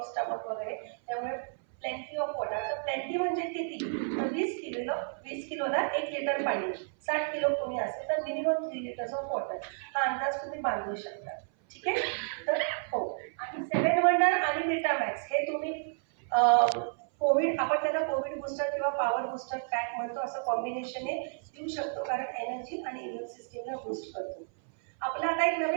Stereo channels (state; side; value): silent; left; 57 dB below the other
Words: स्टमक वगैरे. त्यामुळे प्लेंटी ऑफ वॉटर. तर प्लेंटी म्हणजे किती, तर 20 किलोला 1 लिटर पाणी. 60 किलो कोणी असेल तर मिनिमम 3 लिटर्स ऑफ वॉटर. हा अंदाज तुम्ही बांधू शकता. ठीक आहे. तर हो, आणि 7 वंडर आणि विटामॅक्स हे तुम्ही कोविड, आपण त्याला कोविड बूस्टर किंवा पॉवर बूस्टर पॅक म्हणतो, असं कॉम्बिनेशन देऊ शकतो, कारण एनर्जी आणि इम्युन सिस्टीमला बूस्ट करतो. आपला आता एक